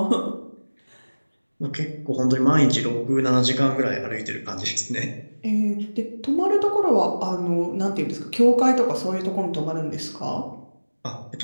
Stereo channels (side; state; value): both; inverted; correlation -1.00